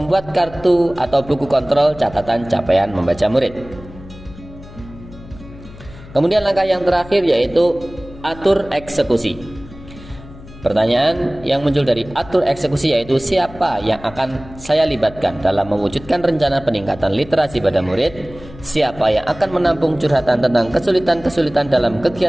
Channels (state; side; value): noise; left; hum, 18 dB below the sound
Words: kartu atau buku kontrol catatan capaian membaca murid. Kemudian langkah yang terakhir yaitu atur eksekusi. Pertanyaan yang muncul dari atur eksekusi yaitu siapa yang akan saya libatkan dalam mewujudkan rencana peningkatan literasi pada murid, siapa yang akan menampung curhatan tentang kesulitan-kesulitan dalam